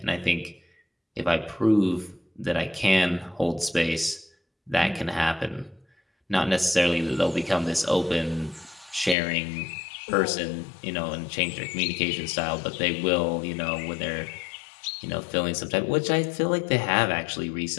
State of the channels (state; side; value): drops out; right; at 9.2 s